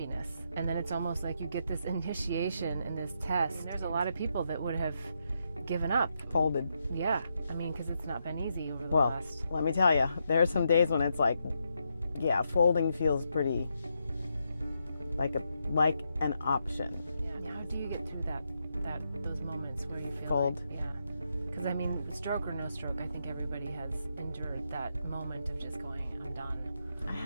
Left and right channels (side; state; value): both; inverted; correlation -0.81